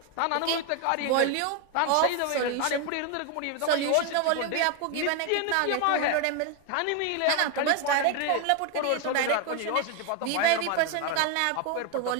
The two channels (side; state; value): both; different; correlation 0.01